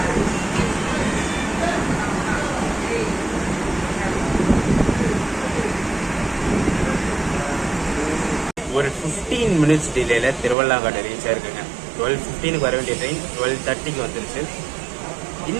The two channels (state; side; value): drops out; left; at 10.6 s